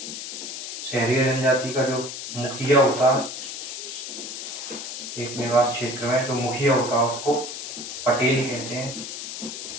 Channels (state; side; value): noise; left; hiss, 7 dB below the sound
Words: शहरी जनजाति का जो मुखिया होता है एक निवास क्षेत्र में, जो मुखिया होता है उसको पटेल कहते हैं।